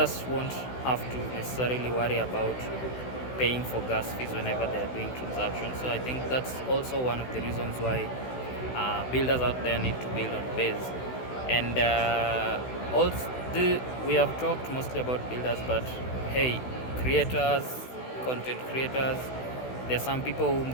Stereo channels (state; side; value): late; right; 16 ms